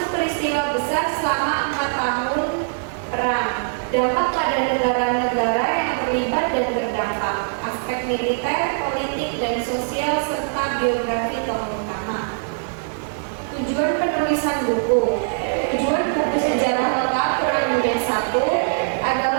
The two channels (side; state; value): left; silent; digital silence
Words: peristiwa besar selama 4 tahun perang, dampak pada negara-negara yang terlibat dan terdampak, aspek militer, politik, dan sosial, serta biografi tokoh utama. Tujuan penulisan buku. Tujuan buku sejarah lengkap Perang Dunia I